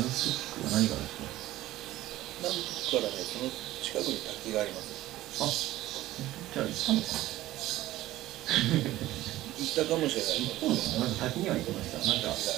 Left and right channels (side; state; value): left; quieter; 15.7 dB